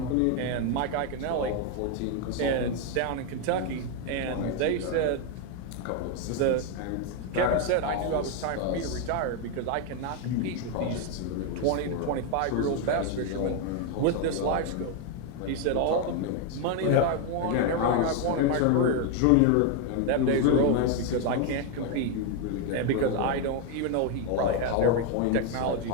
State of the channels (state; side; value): different; both; correlation 0.01